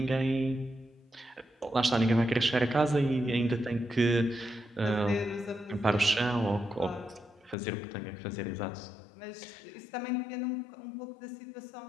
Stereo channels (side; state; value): right; drops out; at 7.6 s